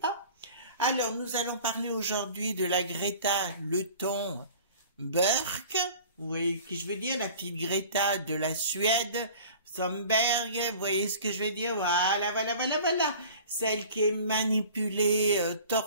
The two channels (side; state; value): both; inverted; correlation -0.44